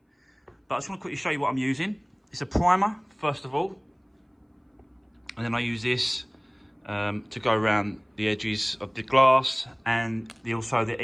But I just want to quickly show you what I'm using. It's a primer, first of all. And then I use this to go around the edges of the glass and also the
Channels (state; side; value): identical; both; correlation 1.00